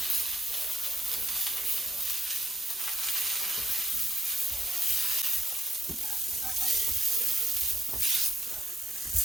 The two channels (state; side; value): normal; both; correlation 0.81